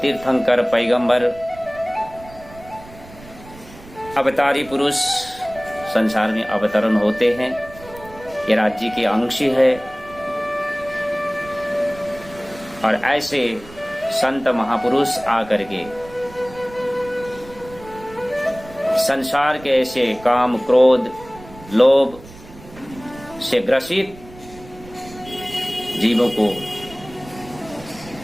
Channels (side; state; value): right; noise; rumble, 19 dB below the sound